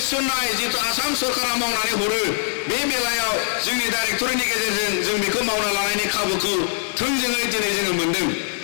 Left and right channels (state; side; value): silent; right; 64 dB below the other